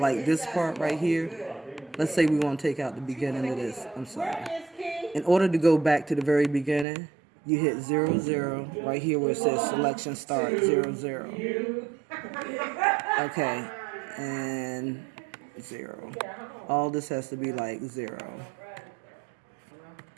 this part right here, let's say we want to take out the beginning of this. I'm sorry. In order to go back to the very beginning, you hit 00 right here where it says selection start 00. Okay, and 0. All this has to be like 0.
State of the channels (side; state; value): left; drops out; at 6.9 s